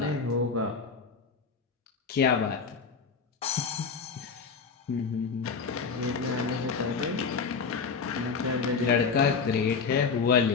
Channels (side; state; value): right; quieter; 5.3 dB